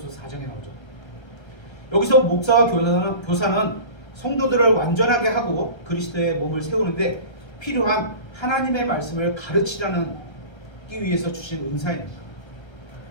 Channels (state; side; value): late; right; 1.3 ms